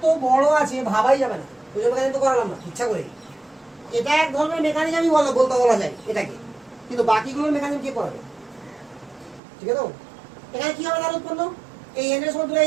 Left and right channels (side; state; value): left; drops out; at 9.4 s